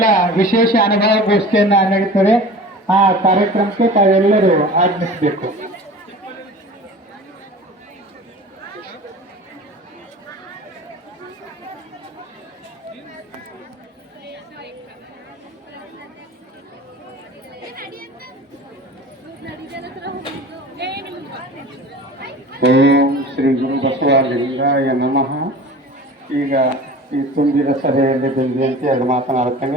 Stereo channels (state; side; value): normal; both; correlation 0.39